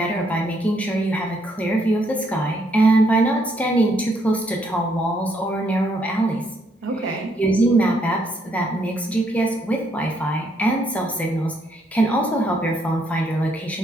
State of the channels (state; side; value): normal; both; correlation 0.72